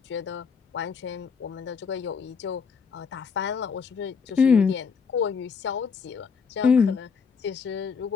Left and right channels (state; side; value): quieter; right; 5.7 dB